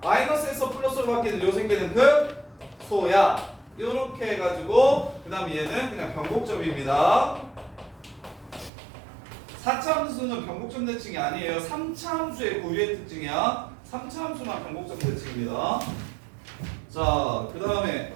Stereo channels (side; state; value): left; drops out; at 8.7 s